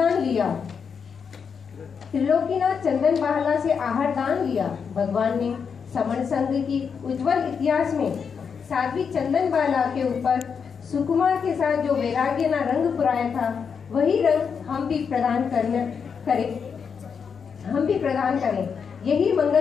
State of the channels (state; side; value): quieter; right; 6.4 dB